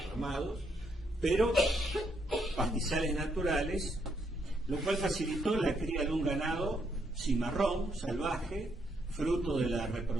armados, pero pastizales naturales, lo cual facilitó la cría de un ganado cimarrón, salvaje, fruto de la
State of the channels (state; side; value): normal; both; correlation 0.75